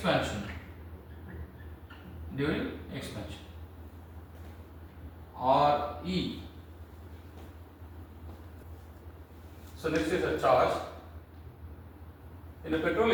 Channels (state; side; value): identical; both; correlation 1.00